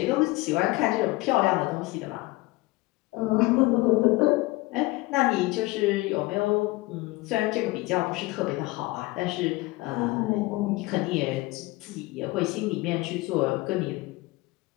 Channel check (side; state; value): right; quieter; 21.4 dB